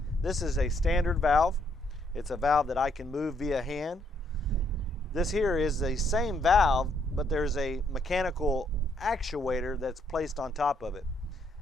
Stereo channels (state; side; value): normal; both; correlation 0.71